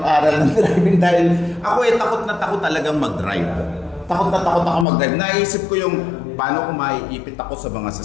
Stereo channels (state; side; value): drops out; right; at 4.9 s